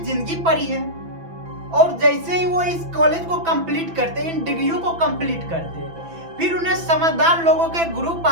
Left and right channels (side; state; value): left; late; 6.0 ms